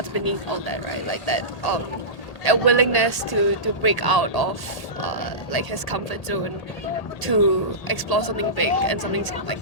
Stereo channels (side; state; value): right; late; 1.8 ms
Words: beneath all that, right? Like that a willingness to break out of like his comfort zone, to explore something big and something like